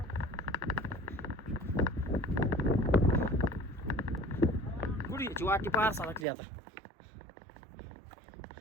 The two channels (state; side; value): drops out; left; at 6.2 s